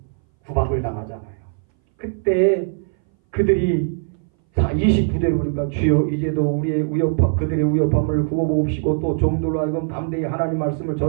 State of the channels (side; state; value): left; silent; 61 dB below the other